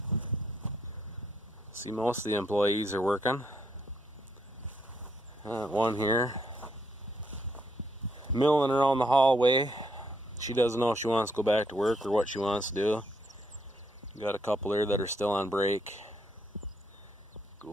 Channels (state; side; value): normal; both; correlation 0.74